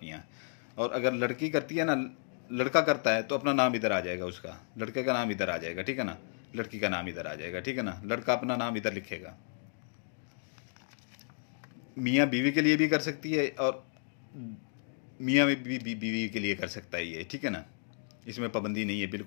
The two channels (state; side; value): silent; right; digital silence